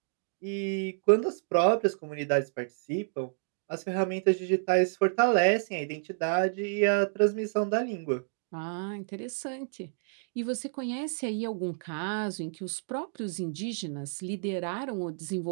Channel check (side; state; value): left; silent; digital silence